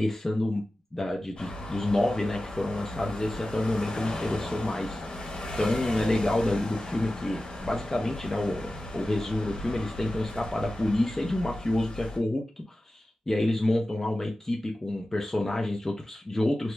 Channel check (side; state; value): both; normal; correlation 0.95